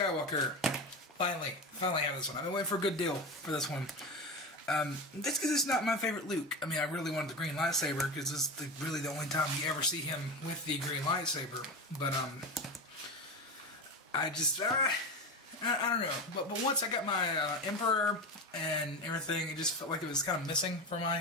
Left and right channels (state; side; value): normal; both; correlation 0.22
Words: Finally have this one. I've been waiting for a good deal for this one. That's because it's not my favorite Luke. I mean, I really wanted the green lightsaber, because this is really the only time you ever see him with the green lightsaber. But, I just, I don't know. But once I got my Emperor and everything, it just felt like it was kind of missing from